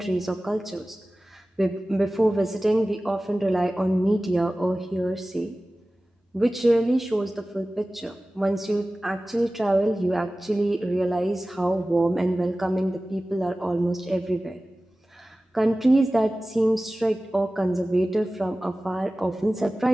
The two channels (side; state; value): both; normal; correlation 0.97